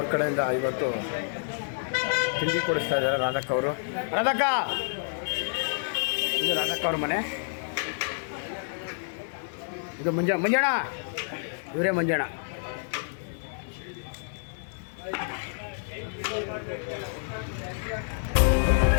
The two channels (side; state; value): right; silent; digital silence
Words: ಕಡೆಯಿಂದ ಇವತ್ತು ತಿಂಡಿ ಕೊಡಿಸ್ತಾ ಇದ್ದಾರೆ ರಾಧಕ್ಕ ಅವರು. ರಾಧಕ್ಕ, ಇದು ರಾಧಕ್ಕ ಅವ್ರ ಮನೆ. ಇದು ಮಂಜಣ್ಣ, ಇವರೇ ಮಂಜಣ್ಣ.